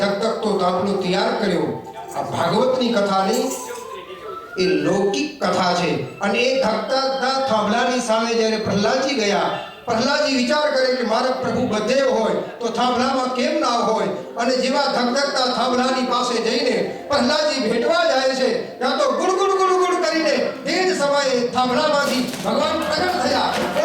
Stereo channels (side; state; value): both; identical; correlation 1.00